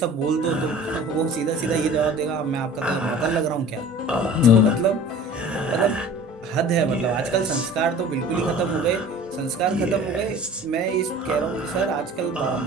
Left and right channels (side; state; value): both; normal; correlation 0.43